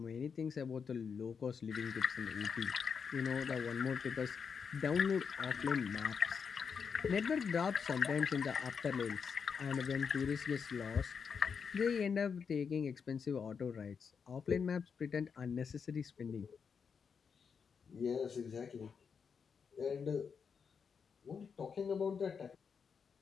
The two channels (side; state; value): right; quieter; 6.2 dB